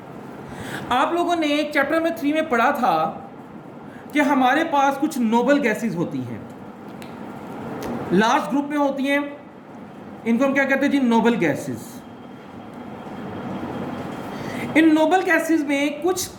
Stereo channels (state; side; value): identical; both; correlation 1.00